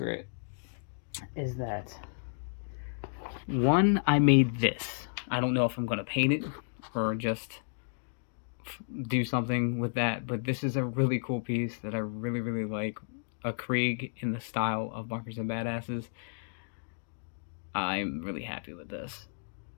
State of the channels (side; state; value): right; silent; digital silence